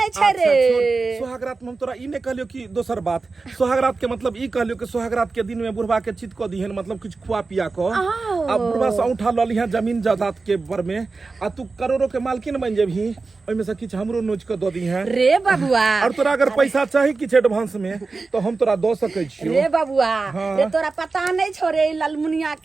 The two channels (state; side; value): quieter; left; 4.0 dB